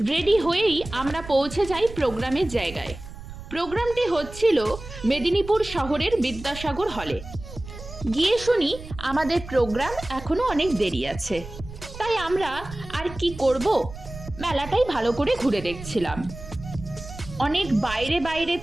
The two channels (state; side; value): noise; right; rumble, 13 dB below the sound